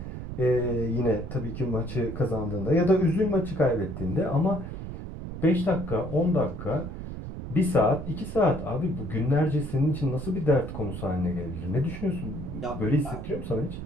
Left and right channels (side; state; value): right; noise; rumble, 8 dB below the sound